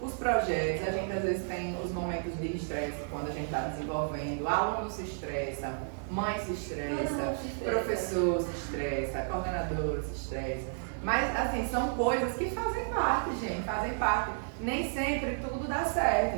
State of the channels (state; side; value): silent; left; 56 dB below the other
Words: os projetos, a gente às vezes tem os momentos de estresse quando a gente está desenvolvendo, aluno se estressa, mãe se estressa, professor se estressa, coordenador se estressa. Mas assim, são coisas que fazem parte, gente, fazem parte. Nem sempre tudo dá